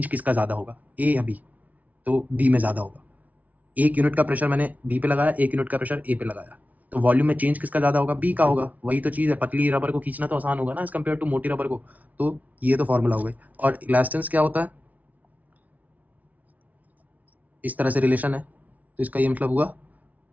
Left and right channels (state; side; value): late; left; 0.073 ms